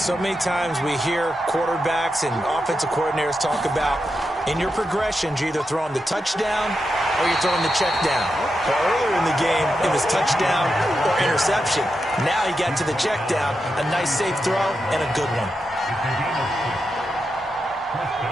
many times we hear quarterbacks and offensive coordinators talk about in your progressions, you're either throwing the touchdown or you're throwing the check down. Well, earlier in the game, it was touchdown or interception. Now he got to the check down, a nice safe throw, and a good one.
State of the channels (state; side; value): normal; both; correlation 0.87